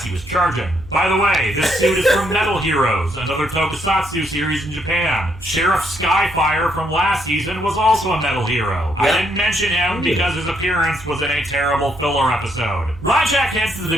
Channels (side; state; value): right; noise; hum, 18 dB below the sound